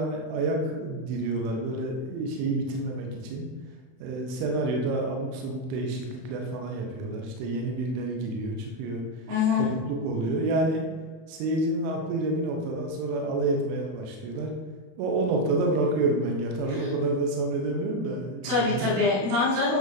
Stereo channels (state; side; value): late; left; 31 ms